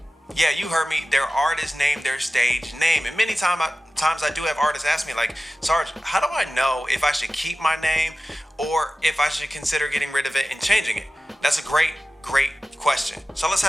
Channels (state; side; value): normal; both; correlation 0.96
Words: Yeah, you heard me. Their artist name, their stage name. And many times I do have artists ask me, like, Sarge, how do I know if I should keep my name or if I should consider getting rid of it and changing it? That's a great question. So let's